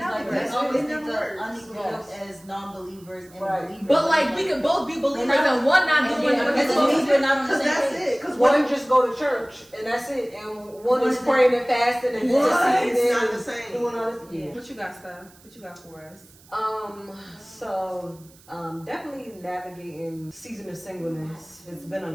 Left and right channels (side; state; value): right; noise; hiss, 26 dB below the sound